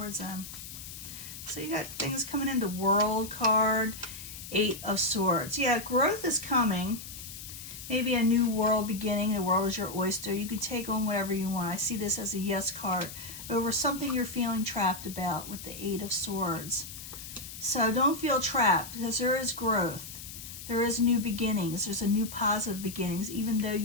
them. So you got things coming in. The World card, 8 of Swords. Yeah, growth is coming. Maybe a new world beginning. The world is your oyster. You can take on whatever you want. I see this as a yes card over something you're feeling trapped about with the 8 of Swords. So don't feel trapped, because there is growth. There is new beginnings. There's a new positive beginnings. Even though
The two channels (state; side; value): noise; left; hiss, 11 dB below the sound